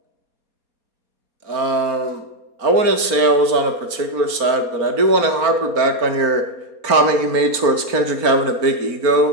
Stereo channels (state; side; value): late; left; 4.5 ms